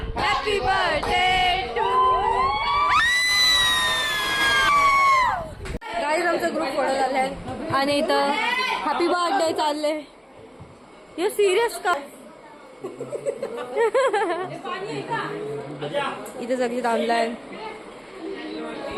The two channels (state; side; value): identical; both; correlation 1.00